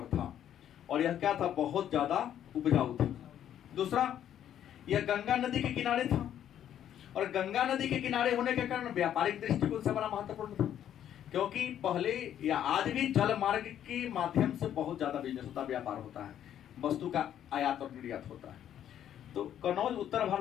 था और यह क्या था? बहुत ज्यादा उपजाऊ था। दूसरा, यह गंगा नदी के किनारे था और गंगा नदी के किनारे होने के कारण व्यापारिक दृष्टिकोण से बड़ा महत्वपूर्ण था, क्योंकि पहले या आज भी जल मार्ग के माध्यम से बहुत ज्यादा बिजनेस होता, व्यापार होता है, वस्तु का आयात और निर्यात होता है। तो कन्नौज उत्तर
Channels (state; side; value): quieter; right; 10.4 dB